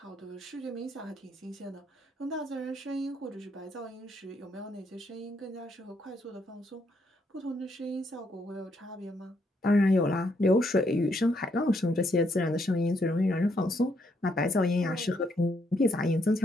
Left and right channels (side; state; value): both; normal; correlation 0.74